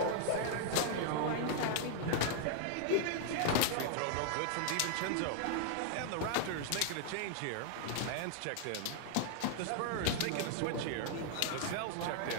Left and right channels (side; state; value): both; different; correlation 0.00